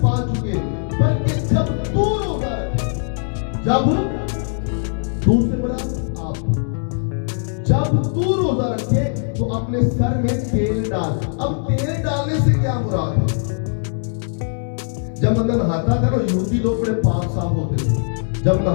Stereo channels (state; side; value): silent; right; 65 dB below the other